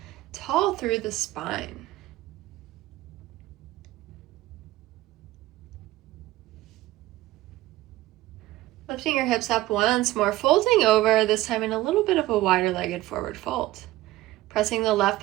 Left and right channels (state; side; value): quieter; left; 16.7 dB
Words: tall through the spine. Lifting your hips up once more, folding over, this time in a little bit of a wider legged forward fold. Pressing the left